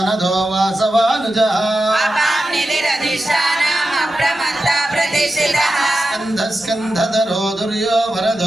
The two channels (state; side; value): normal; both; correlation 0.91